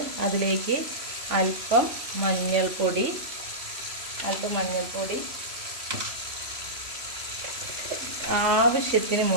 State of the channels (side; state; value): left; late; 3.0 ms